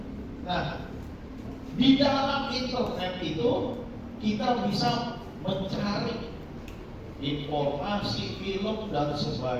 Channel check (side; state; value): both; identical; correlation 1.00